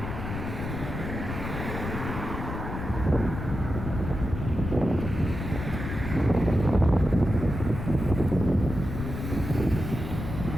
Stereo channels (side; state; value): left; noise; rumble, 6 dB below the sound